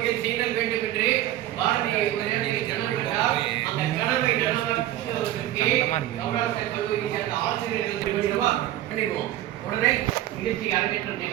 செய்தல் வேண்டும் என்று பாரதிய கனவுகிறார். அந்த கனவை நனவாக்குவதற்கு கௌரவ கல்லூரியை சேர்ந்த ஆசிரியர்கள் பண்ணிடுவோம். உடனே நிகழ்ச்சி அரங்கேற்றம்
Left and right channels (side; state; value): left; quieter; 13.7 dB